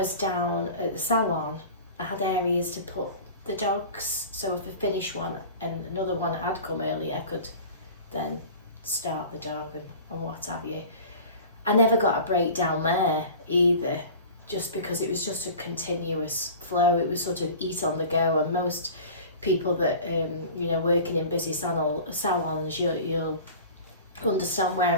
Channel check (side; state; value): both; inverted; correlation -0.39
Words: down at the salon, I had areas to put the dogs, so if I finished one and another one had come early, I could then start the dog and what have you. I never got a break down there either, just because it was just a continuous flow. It was sort of eat on the go, and most people that you know, working in busy salons, you'll understand where